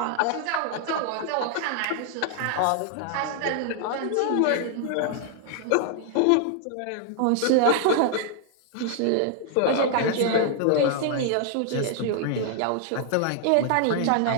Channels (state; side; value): different; both; correlation 0.00